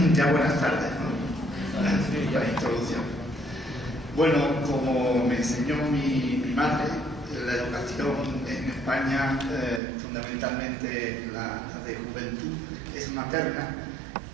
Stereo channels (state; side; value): drops out; left; at 9.8 s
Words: Ya buenas tardes, ¿no? La introducción. Bueno, como me enseñó mi madre, la educación en España, fundamentalmente la de juventud, es materna,